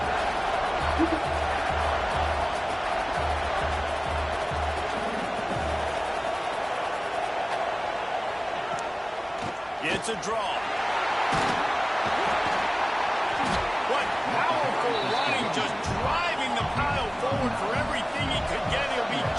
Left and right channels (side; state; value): both; identical; correlation 1.00